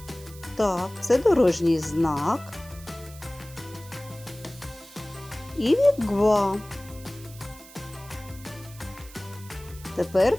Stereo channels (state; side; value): noise; right; hiss, 19 dB below the sound